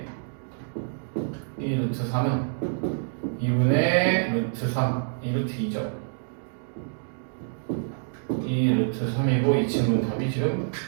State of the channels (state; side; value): silent; left; digital silence